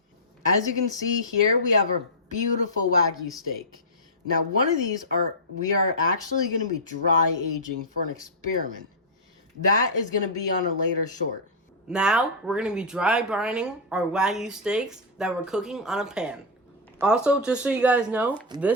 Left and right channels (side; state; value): both; normal; correlation -0.08